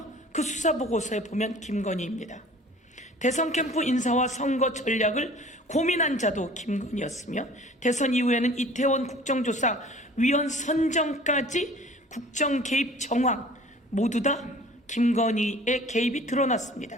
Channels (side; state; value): both; normal; correlation 0.47